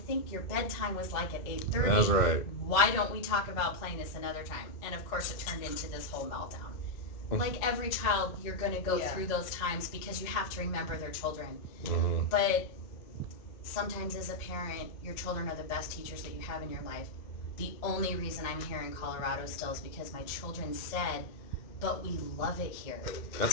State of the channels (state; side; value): late; right; 2.1 ms